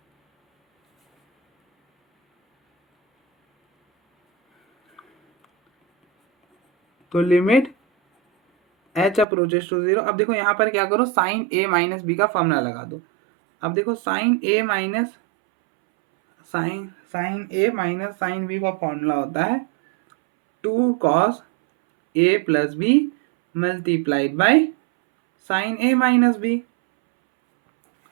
तो लिमिट एच अप्रोचेस टू 0। अब देखो यहाँ पर क्या करो, साइन ए माइनस बी का फॉर्मूला लगा दो। अब देखो साइन ए माइनस साइन बी का फॉर्मूला होता है 2 cos A plus B multiplied by sine A minus B.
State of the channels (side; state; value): left; drops out; at 9.2 s